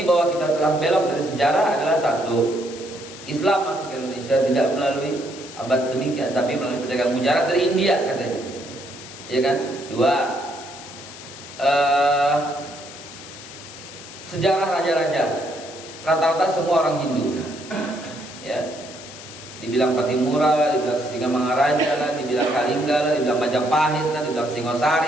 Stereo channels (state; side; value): noise; left; hiss, 15 dB below the sound